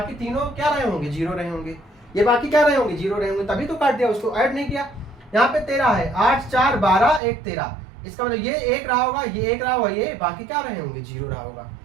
तीनों क्या रहे होंगे, 0 रहे होंगे, ये बाकी क्या रहे होंगे, 0 रहे होंगे, तभी तो काट दिया, उसको ऐड नहीं किया। यहाँ पे 13 है, 8 4 12 1 13, इसका मतलब ये 1 रहा होगा, ये 1 रहा होगा, ये बाकी क्या रहे होंगे, 0 रहा होगा।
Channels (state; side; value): drops out; left; at 7.2 s